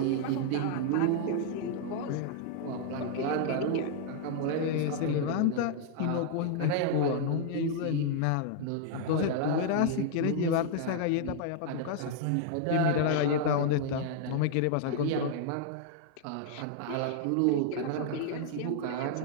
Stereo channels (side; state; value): both; different; correlation 0.00